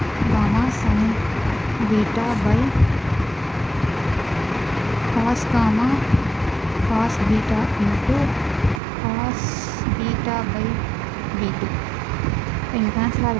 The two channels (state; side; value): drops out; left; at 8.8 s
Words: gamma sin beta by cos gamma cos beta into cos beta by b2. இங்கே கேன்சல்